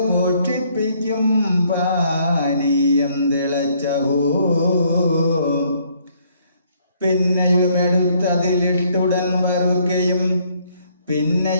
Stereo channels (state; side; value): inverted; both; correlation -0.67